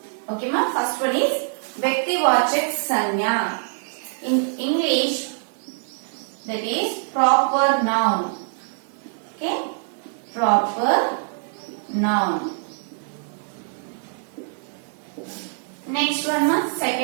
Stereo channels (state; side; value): silent; left; 63 dB below the other